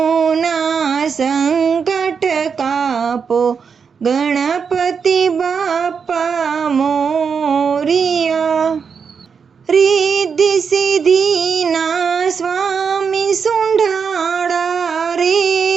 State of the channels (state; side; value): quieter; left; 6.1 dB